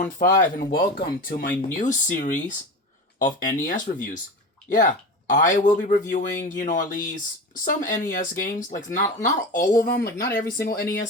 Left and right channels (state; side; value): normal; both; correlation 0.28